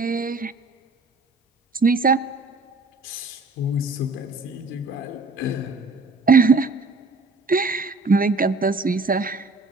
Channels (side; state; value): left; quieter; 3.4 dB